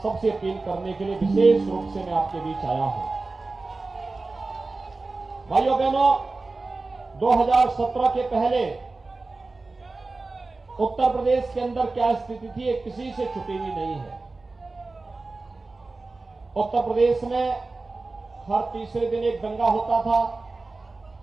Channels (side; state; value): left; quieter; 3.5 dB